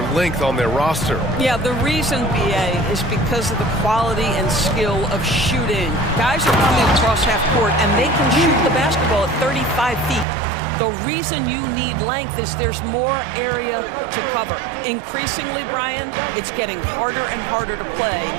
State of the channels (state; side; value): drops out; left; at 10.2 s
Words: length on their roster. Yeah, the reason, BA, is because of the quality and skill of shooting. Guys are coming across half court, and they can shoot the basketball at 35 feet. The reason you need length is there's more area to cover. Increasingly, Brian, it's getting harder and harder to play